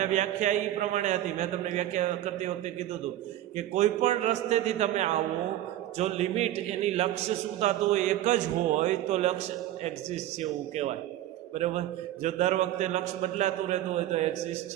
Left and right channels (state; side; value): quieter; left; 13.4 dB